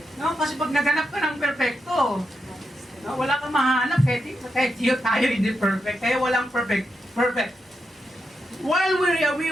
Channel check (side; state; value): both; normal; correlation 0.85